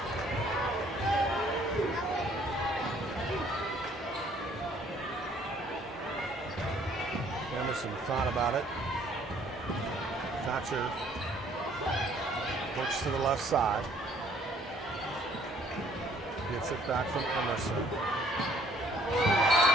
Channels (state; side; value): normal; both; correlation 0.60